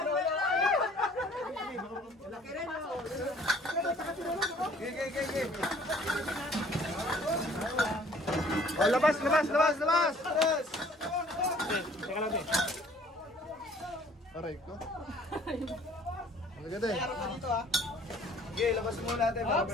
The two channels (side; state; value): both; normal; correlation 0.55